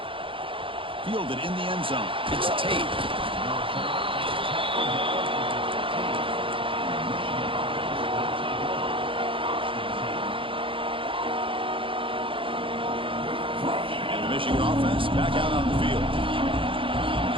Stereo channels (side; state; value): left; late; 0.25 ms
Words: Fielded in the end zone. It's Tate. And the Michigan offense back out on the field.